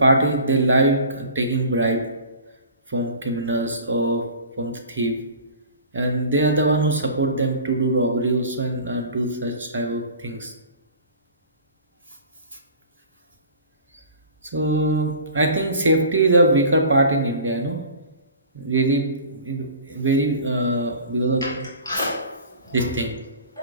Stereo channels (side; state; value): both; inverted; correlation -0.41